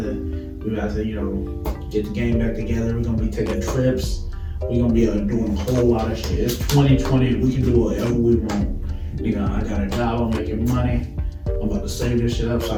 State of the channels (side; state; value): both; identical; correlation 1.00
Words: get the game back together. We're gonna be taking trips. We're gonna be doing a whole lot of shit. It's 2020, we can do whatever we want. I got a job, I'm making money. I'm about to save this shit up so I